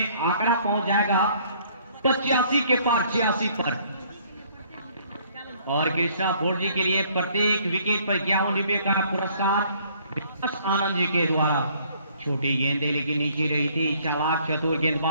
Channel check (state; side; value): inverted; both; correlation -0.60